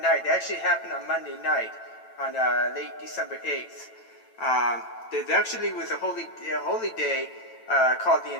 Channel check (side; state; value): right; late; 9.0 ms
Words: It actually happened on Monday night, on late December 8th. There actually was a holy day called the